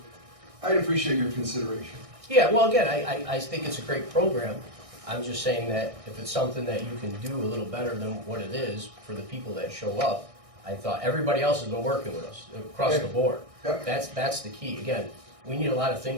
I'd appreciate your consideration. Yeah, well, again, I think it's a great program. I'm just saying that if it's something that you can do a little better than what it is for the people that show up, I thought everybody else has been working with us across the board. Yep. That's the key. Again, we need a lot of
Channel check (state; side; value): late; left; 1.6 ms